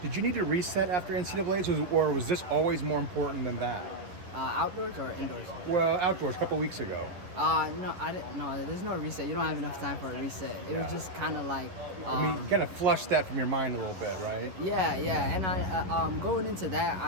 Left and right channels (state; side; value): late; left; 11 ms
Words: Did you need to reset after NCAAs, or was this always more important than that? Outdoors or indoors? Well, outdoors, a couple weeks ago. No, I didn't. No, there's no reset. You don't have enough time for a reset. It was just kind of like. I mean, kind of flush that from your mind a little bit, right? Yeah, and I going into that,